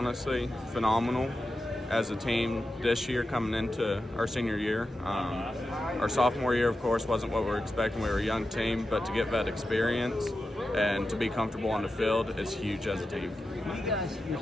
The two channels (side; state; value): both; normal; correlation 0.91